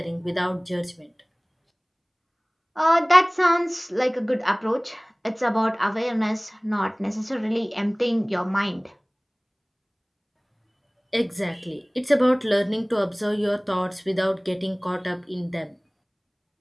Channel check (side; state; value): both; identical; correlation 1.00